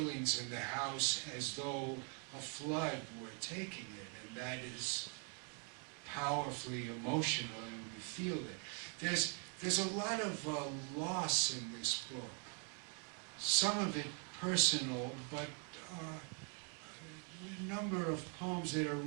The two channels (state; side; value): quieter; left; 39.2 dB